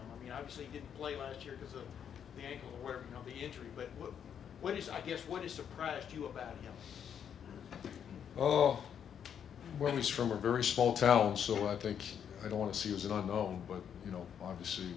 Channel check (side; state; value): right; quieter; 8.4 dB